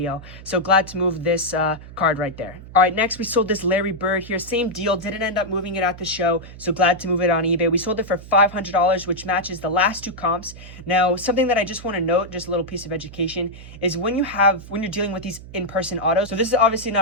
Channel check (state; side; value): noise; right; hum, 16 dB below the sound